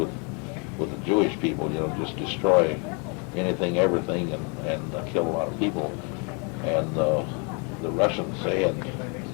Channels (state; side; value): quieter; right; 34.9 dB